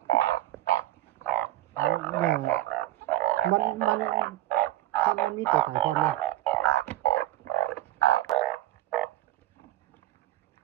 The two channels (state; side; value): quieter; left; 14.1 dB